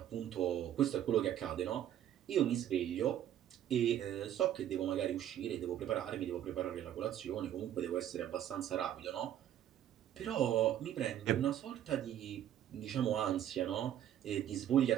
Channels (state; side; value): quieter; left; 11.1 dB